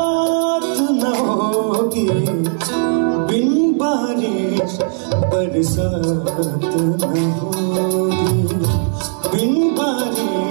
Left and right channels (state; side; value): silent; left; 57 dB below the other